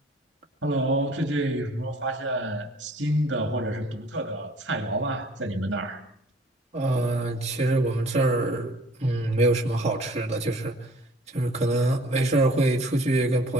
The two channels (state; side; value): normal; both; correlation 0.53